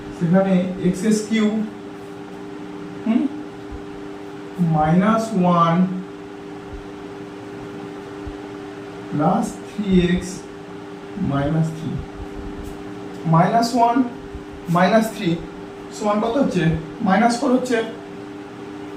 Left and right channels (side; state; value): both; identical; correlation 1.00